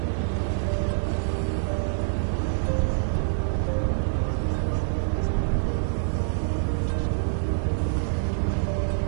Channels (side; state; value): left; silent; 61 dB below the other